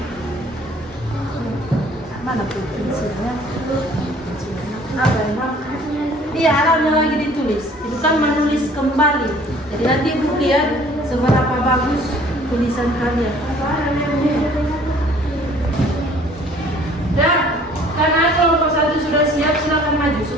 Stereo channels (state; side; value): normal; both; correlation 0.54